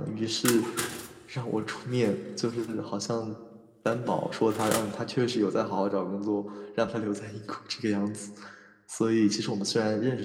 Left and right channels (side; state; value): both; identical; correlation 1.00